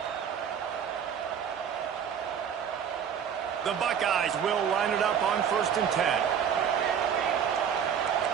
The Buckeyes will line it up on 1st and 10.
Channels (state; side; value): quieter; left; 8.0 dB